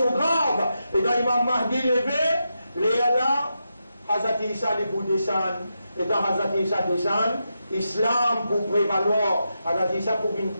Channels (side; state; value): both; inverted; correlation -0.87